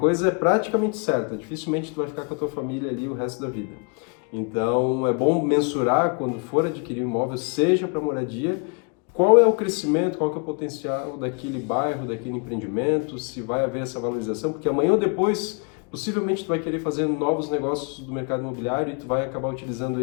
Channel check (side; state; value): right; quieter; 36.9 dB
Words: é praticamente certa, dificilmente tu vai ficar com a tua família ali o resto da vida. Então, é bom mensurar quando for adquirir um imóvel, seja para moradia, qual é o crescimento, qual que é o potencial daquele bairro, daquele empreendimento, se vai haver essa valorização, porque amanhã ou depois, possivelmente tu vai querer fazer novos negócios do mercado imobiliário e tu vai acabar utilizando